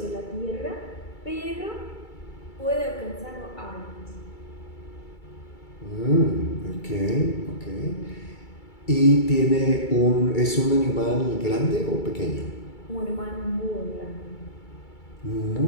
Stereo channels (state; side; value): late; right; 2.3 ms